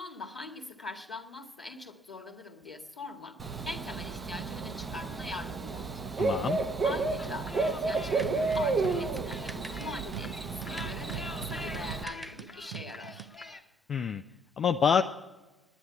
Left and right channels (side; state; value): both; normal; correlation 0.64